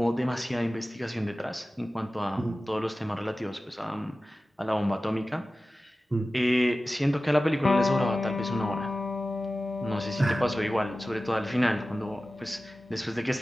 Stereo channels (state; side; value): normal; both; correlation 0.96